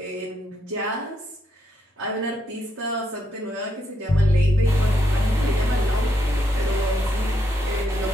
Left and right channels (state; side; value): normal; both; correlation 0.78